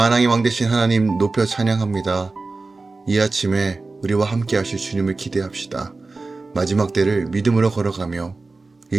왕 되신 하나님 높여 찬양합니다. 이 아침에 우리와 함께 하실 주님을 기대합시다. 마지막 때를 믿음으로 걸어가며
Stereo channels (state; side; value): quieter; left; 3.6 dB